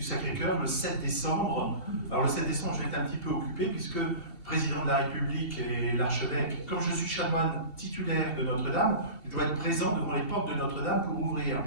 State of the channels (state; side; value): late; right; 2.7 ms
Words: Sacré-Cœur le 7 décembre. Alors le 7 décembre, je vais être un petit peu occupé puisque le président de la République et l'archevêque, comme je suis chanoine titulaire de Notre-Dame, je dois être présent devant les portes de Notre-Dame pour ouvrir